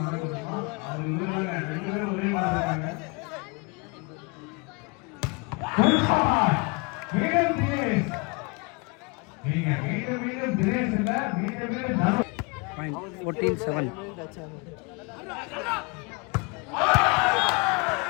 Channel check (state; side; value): quieter; right; 30.2 dB